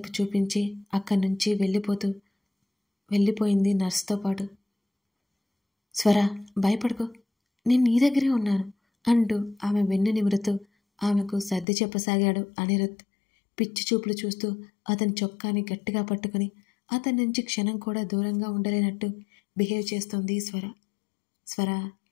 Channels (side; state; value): right; drops out; at 11.7 s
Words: చూపించి అక్కడి నుంచి వెళ్ళిపోయింది నర్సుతో పాటు. స్వర భయపడుకో, నేను నీ దగ్గరే ఉన్నాను అంటూ ఆమె వెన్ను నిమురుతూ ఆమెకు సర్ది చెప్పసాగాడు అనిరుద్ధ్. పిచ్చి చూపులు చూస్తూ అతని చొక్కాని గట్టిగా పట్టుకుని అతని నుంచి క్షణం కూడా దూరంగా ఉండలేనట్టు బిహేవ్ చేస్తోంది స్వర. స్వర